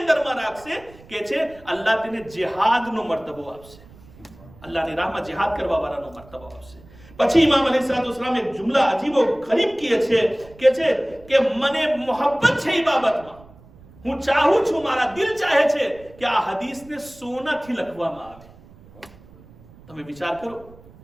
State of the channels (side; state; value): right; noise; rumble, 23 dB below the sound